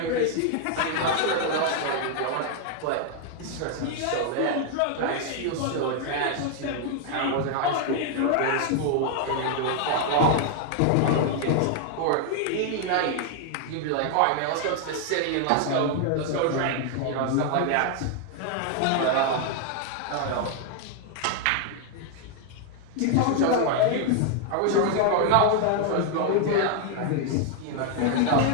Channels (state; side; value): different; both; correlation 0.00